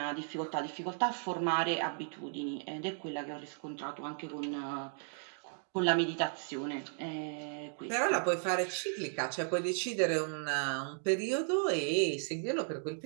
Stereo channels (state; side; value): silent; left; 54 dB below the other